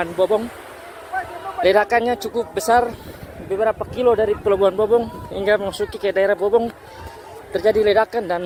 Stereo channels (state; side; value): identical; both; correlation 1.00